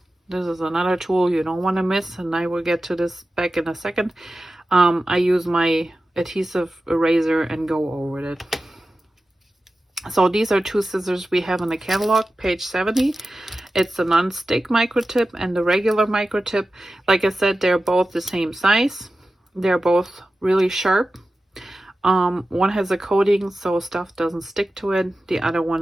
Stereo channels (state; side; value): normal; both; correlation 0.94